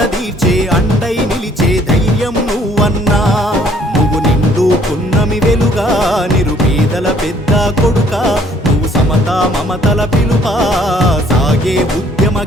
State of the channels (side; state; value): both; normal; correlation 0.61